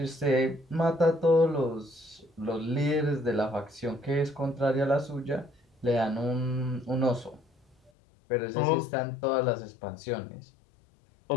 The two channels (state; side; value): drops out; right; at 7.9 s